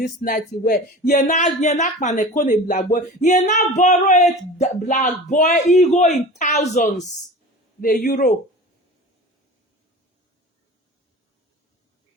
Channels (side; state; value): both; normal; correlation 0.36